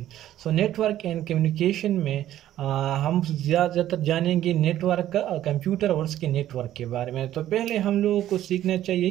So network and communication में हम ज़्यादातर जानेंगे नेटवर्क कंप्यूटर और उसके नेटवर्क के बारे में। तो पहले हम लोगों को सीखना चाहिए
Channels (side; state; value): left; quieter; 12.7 dB